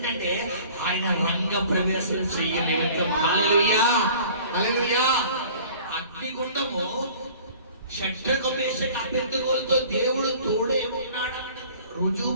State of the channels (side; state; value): both; inverted; correlation -0.48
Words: ఆయన రంగ ప్రవేశం చెయ్యలేదు. హల్లెలూయా హల్లెలూయా. అగ్నిగుండము షడ్రకు మేషకు అబేద్నెగోలతో దేవుడు తోడే ఉన్నాడని రుజువు